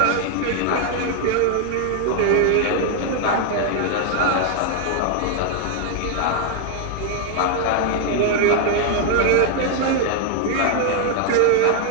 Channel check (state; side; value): different; both; correlation 0.00